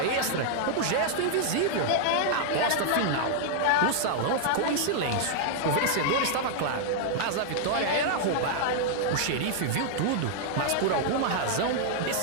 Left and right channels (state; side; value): different; both; correlation -0.01